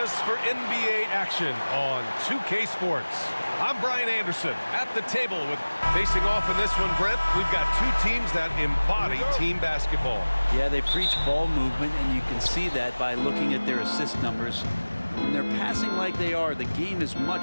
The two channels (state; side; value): inverted; both; correlation -1.00